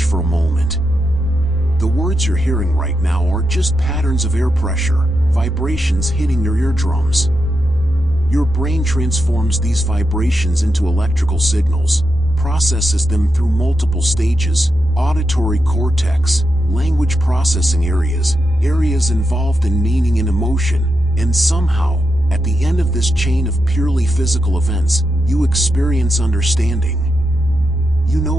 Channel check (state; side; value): normal; both; correlation 0.86